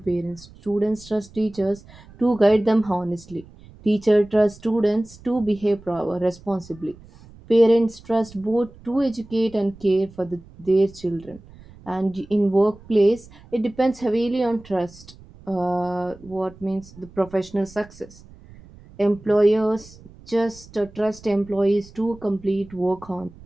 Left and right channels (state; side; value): noise; right; rumble, 22 dB below the sound